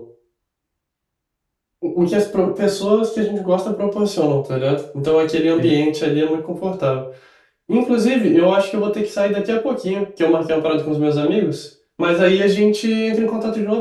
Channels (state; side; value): identical; both; correlation 1.00